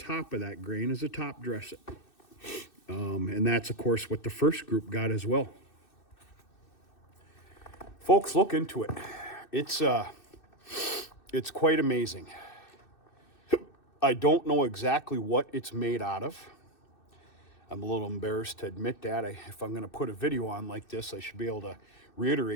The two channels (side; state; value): right; late; 2.6 ms